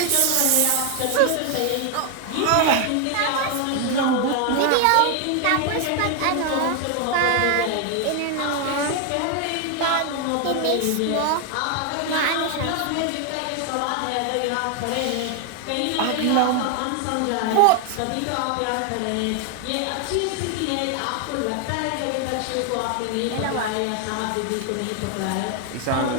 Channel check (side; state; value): both; different; correlation 0.01